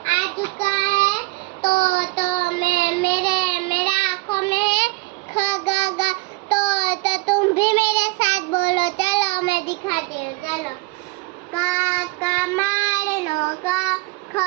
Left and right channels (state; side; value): quieter; left; 24.0 dB